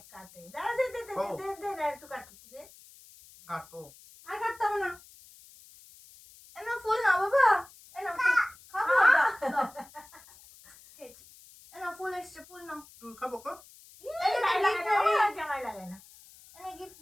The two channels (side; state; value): left; noise; hiss, 23 dB below the sound